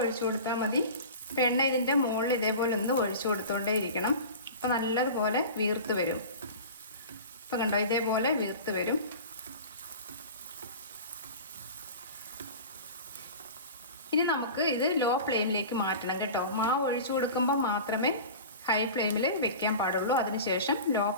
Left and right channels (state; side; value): inverted; both; correlation -0.35